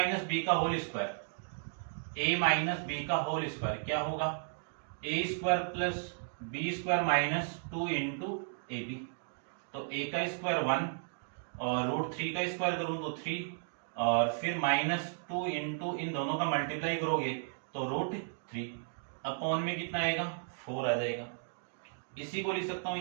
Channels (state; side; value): silent; left; digital silence